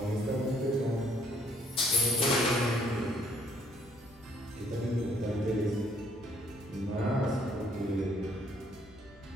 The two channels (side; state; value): both; normal; correlation 0.64